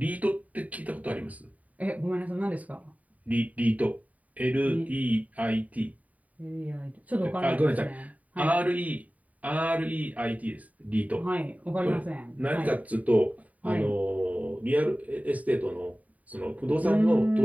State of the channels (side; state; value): left; late; 0.071 ms